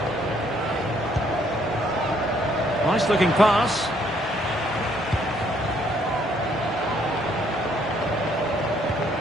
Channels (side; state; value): both; normal; correlation 0.67